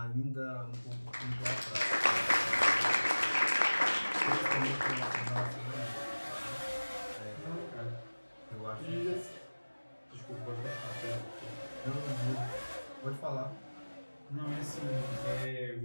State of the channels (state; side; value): inverted; both; correlation -1.00